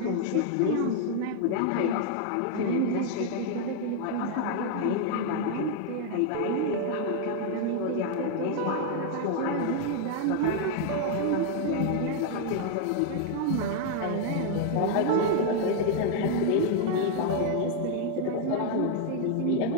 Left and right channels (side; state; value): both; different; correlation 0.00